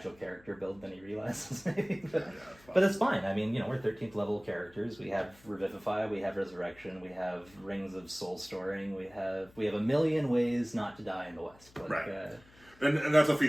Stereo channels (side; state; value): left; noise; hum, 26 dB below the sound